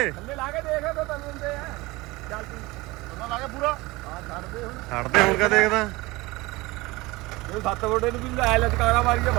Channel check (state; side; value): quieter; left; 21.8 dB